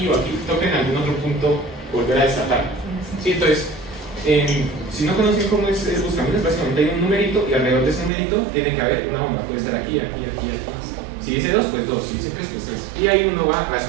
o aquí, toca en algún otro punto volver a desatar. ¿Sí? Entonces, si no conocen cómo es el buscaminas, básicamente hay un numerito y alrededor de ese numerito tiene que haber una bomba. Puede estar aquí, aquí, aquí, aquí. Si dice 2, pues 2. Si dice 3, pues 3. Y ahí uno va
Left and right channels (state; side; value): drops out; left; at 8.1 s